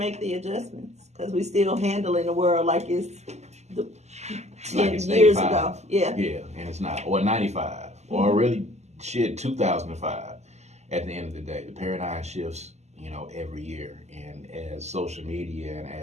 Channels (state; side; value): late; left; 0.33 ms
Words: the adjustments because we're still handling the world like it's 10 years ago. Yeah. Yeah, and it's not. Or 95. Or really, 2005. At the end of the day, the paradigm shifts, every year. And as social media and